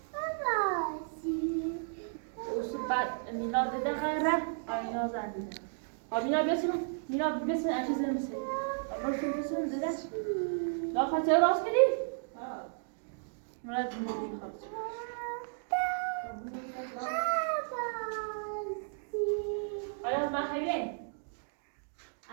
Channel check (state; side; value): silent; left; digital silence